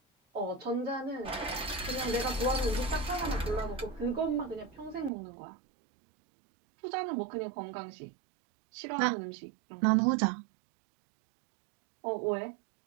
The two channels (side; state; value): left; drops out; at 5.1 s